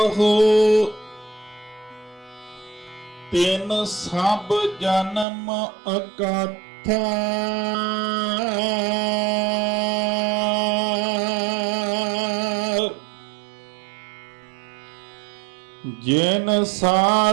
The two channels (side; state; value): left; drops out; at 5.2 s